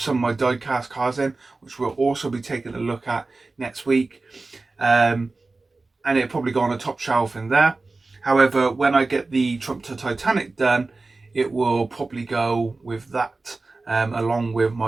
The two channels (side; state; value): left; quieter; 3.5 dB